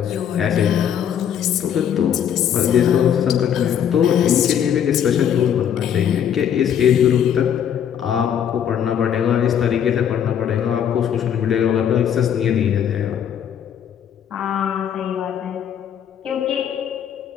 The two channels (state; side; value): quieter; right; 9.1 dB